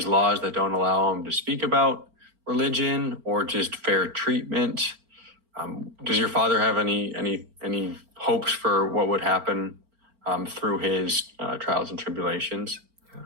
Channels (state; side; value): late; left; 4.4 ms